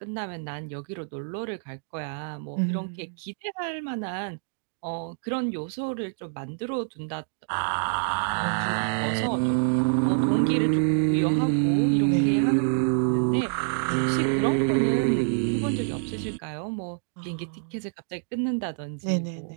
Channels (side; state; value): left; silent; digital silence